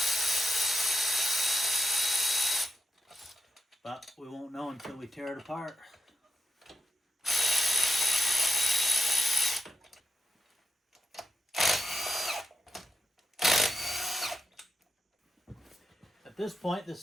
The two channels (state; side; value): normal; both; correlation 0.87